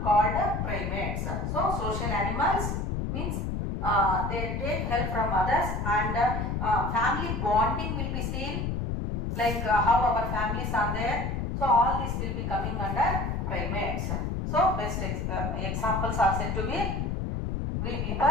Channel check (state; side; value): noise; left; rumble, 2 dB below the sound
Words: called primates. So social animals means they take help from others, and family bonding will be seen, like how our families are there. So all this will be coming under primates. So best examples are said to be we